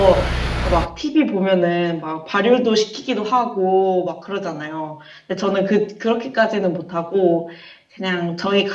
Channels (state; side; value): identical; both; correlation 1.00